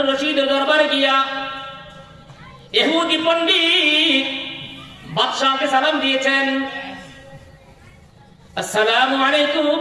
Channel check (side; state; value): both; identical; correlation 1.00